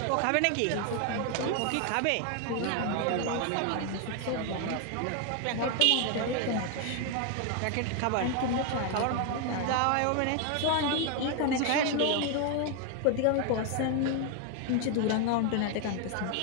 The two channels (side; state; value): both; different; correlation 0.01